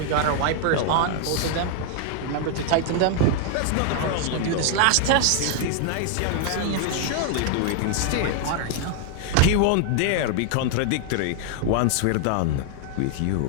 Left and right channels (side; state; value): both; different; correlation 0.00